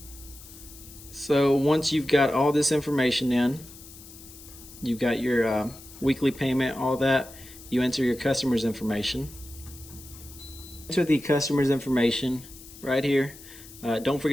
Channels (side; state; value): left; noise; hiss, 18 dB below the sound